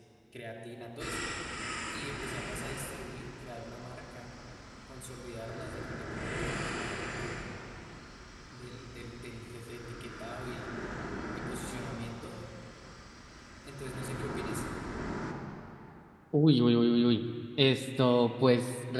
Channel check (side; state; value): both; identical; correlation 1.00